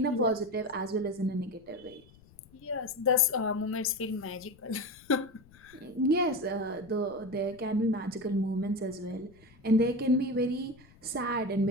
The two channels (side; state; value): left; noise; rumble, 26 dB below the sound